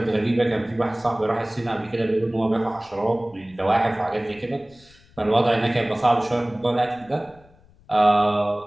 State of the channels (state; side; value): noise; left; rumble, 28 dB below the sound